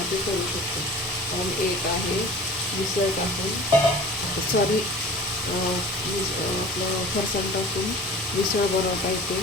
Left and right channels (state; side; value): normal; both; correlation 0.42